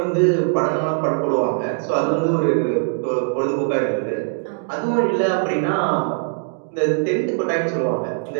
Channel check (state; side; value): silent; left; digital silence